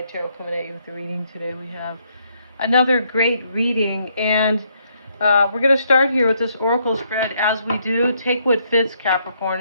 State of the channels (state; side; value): inverted; both; correlation -0.73